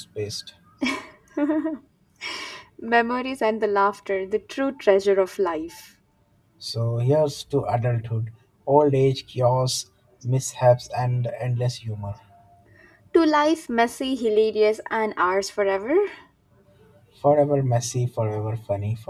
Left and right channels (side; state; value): both; identical; correlation 1.00